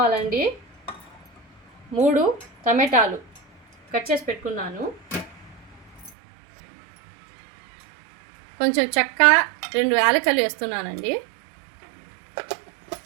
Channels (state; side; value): drops out; left; at 6.1 s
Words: 3 టమాటాలు కట్ చేసి పెట్టుకున్నాను. కొంచెం చెక్క, 2 యాలకులు వేస్తున్నానండి.